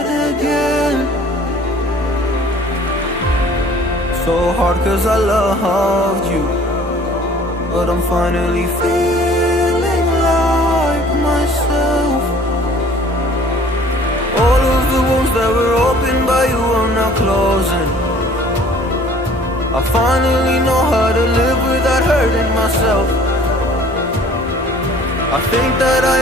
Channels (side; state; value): both; normal; correlation 0.52